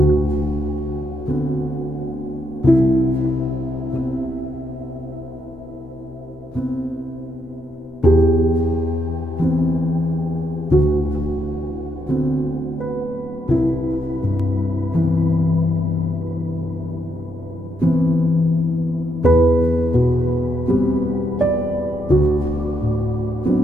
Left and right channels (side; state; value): both; normal; correlation 0.78